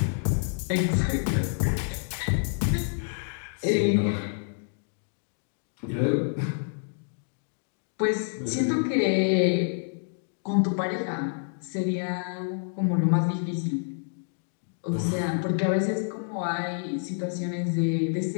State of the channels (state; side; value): silent; right; digital silence